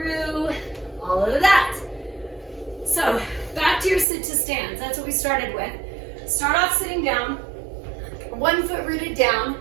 all of that. So back to your sit to stands. That's what we started with. Start off sitting down, one foot rooted down,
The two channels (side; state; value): left; drops out; at 4.0 s